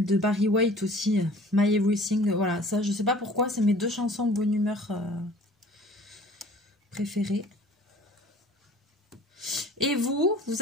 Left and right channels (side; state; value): both; normal; correlation 0.48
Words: de Barry White aussi, My Everything. Voilà, ça, je sais pas pourquoi, c'est mes deux chansons de bonne humeur préférées. Et vous